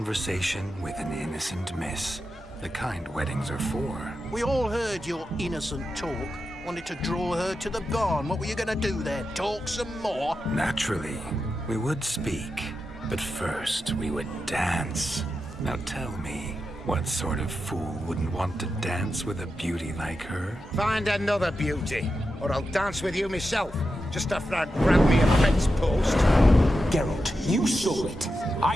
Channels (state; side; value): normal; both; correlation 0.89